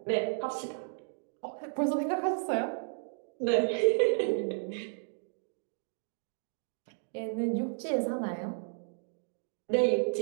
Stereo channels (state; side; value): silent; left; digital silence